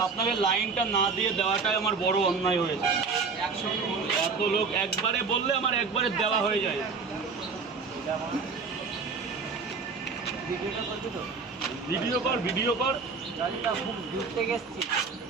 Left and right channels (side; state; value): left; quieter; 4.8 dB